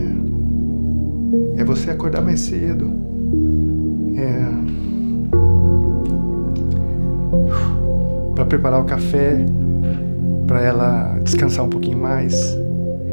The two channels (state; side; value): inverted; both; correlation -1.00